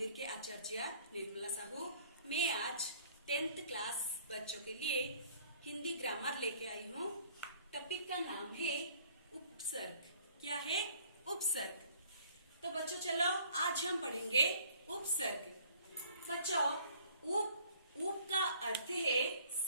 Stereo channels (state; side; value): inverted; both; correlation -0.56